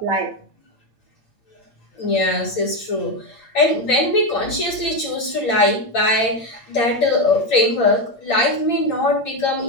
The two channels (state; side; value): late; right; 8.7 ms